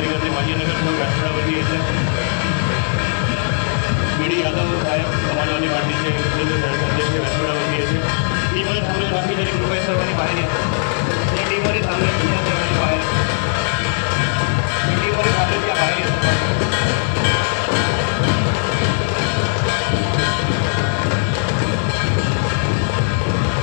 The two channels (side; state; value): right; silent; digital silence